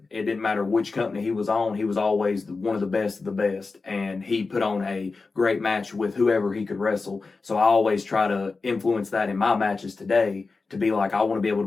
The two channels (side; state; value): right; quieter; 4.1 dB